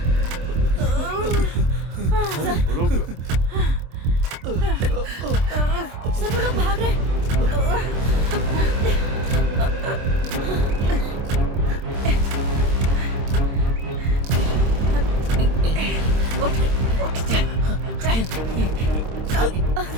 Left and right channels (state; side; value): late; left; 26 ms